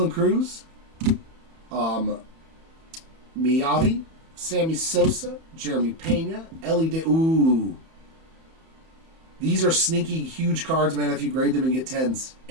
Cruz, Miyavi, Sammy Sosa, Jeremy Pena, Ellie De... Ooh. These are sneaky, huge cards, man, if you grade them and get 10s.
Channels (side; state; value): left; late; 31 ms